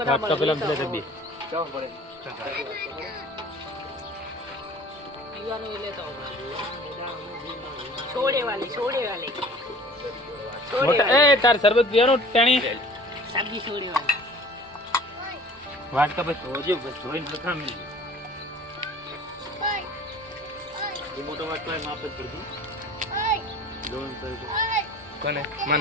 ના વાટકા પેલા પેલા ડબ્બી. ચાલો પડે. પીવાનું એ લેતો આવો. છોડે વાલી છોડે વાલી. છોડે મોટા વાલી. એ તાર શરબત પીવાનું ટાણી સબ્જી છોડે વાલી. વાટકા બસ જોજો બસ જોઈને લખામ એ મોટો વાટકો એ માપ જ પડજો જોન કરજો કોને? માં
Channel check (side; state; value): both; normal; correlation 0.47